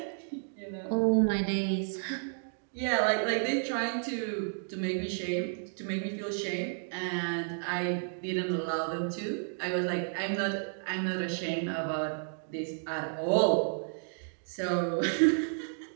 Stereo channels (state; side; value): silent; left; digital silence